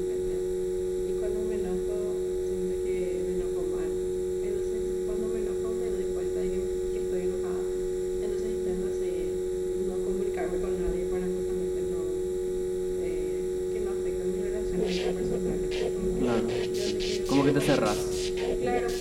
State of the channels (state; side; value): identical; both; correlation 1.00